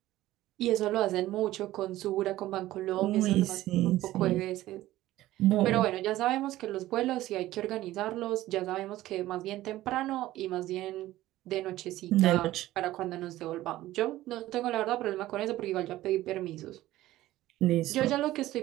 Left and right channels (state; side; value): quieter; left; 15.6 dB